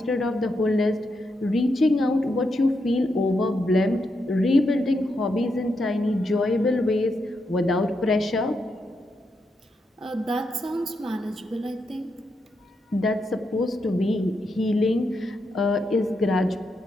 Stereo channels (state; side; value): normal; both; correlation 0.83